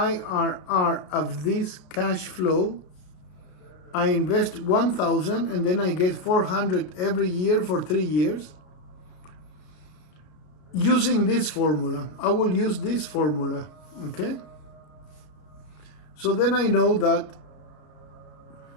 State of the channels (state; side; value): late; right; 33 ms